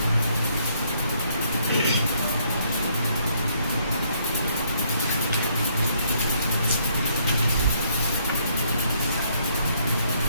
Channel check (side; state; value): both; inverted; correlation -0.69